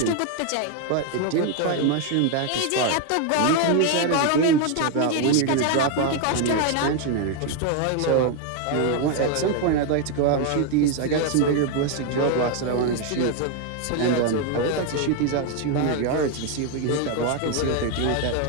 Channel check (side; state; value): both; different; correlation 0.01